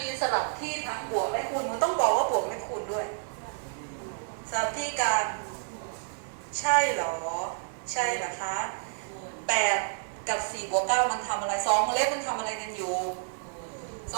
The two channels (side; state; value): left; silent; digital silence